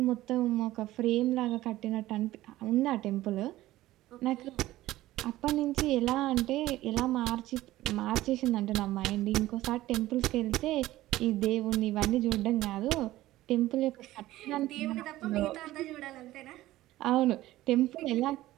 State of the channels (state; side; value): quieter; left; 16.0 dB